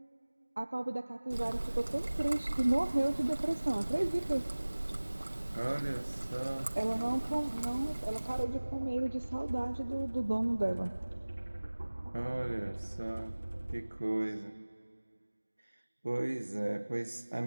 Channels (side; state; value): both; inverted; correlation -1.00